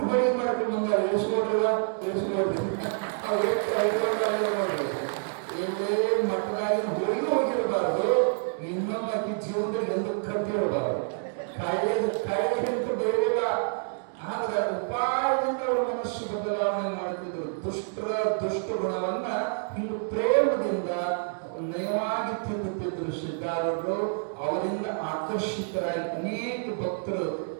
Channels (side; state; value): left; silent; digital silence